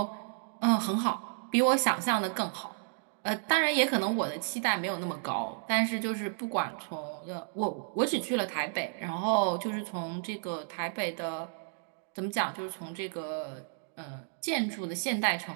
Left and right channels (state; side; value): silent; left; digital silence